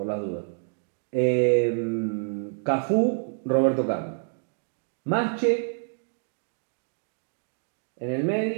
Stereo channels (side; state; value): left; silent; digital silence